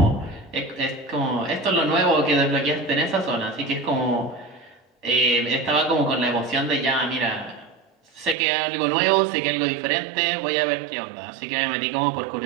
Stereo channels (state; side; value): drops out; left; at 8.3 s